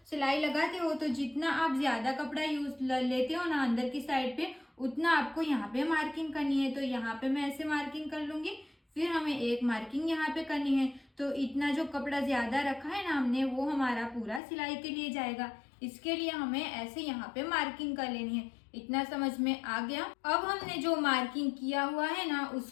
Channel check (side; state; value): right; drops out; at 14.4 s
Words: सिलाई लगाते हो, तो जितना आप ज्यादा कपड़ा यूज लेते हो ना अंदर की साइड पे, उतना आपको यहाँ पे मार्किंग करनी है। तो यहाँ पे मैं ऐसे मार्किंग कर लूंगी। फिर हमें एक मार्किंग यहाँ पे करनी है। तो इतना जो कपड़ा ज्यादा रखा है ना हमने, वो हमारा पूरा सिलाई के लिए जाएगा। इसके लिए हमें ऐसे यहाँ पे मार्किंग कर लेनी है। इतना समझ में आ गया। अब हमने जो मार्किंग किया हुआ है ना,